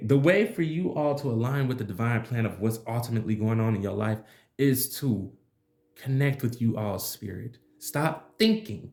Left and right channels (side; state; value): both; identical; correlation 1.00